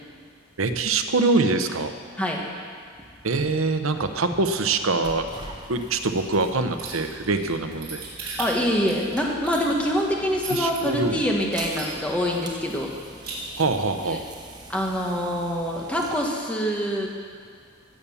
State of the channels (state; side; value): normal; both; correlation 0.30